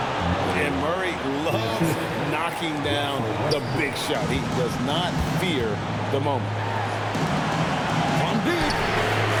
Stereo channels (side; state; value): both; identical; correlation 1.00